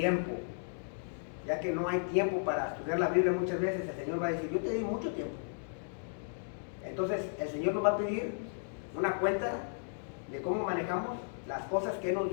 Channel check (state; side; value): silent; right; digital silence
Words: Ya que no hay tiempo para estudiar la Biblia muchas veces, el Señor va a decir, yo te di mucho tiempo. Entonces el Señor nos va a pedir una cuenta de cómo manejamos las cosas que Él nos